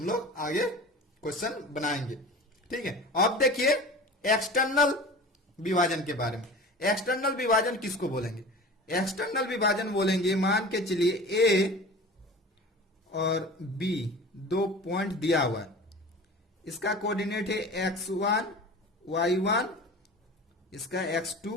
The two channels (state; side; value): normal; both; correlation 0.37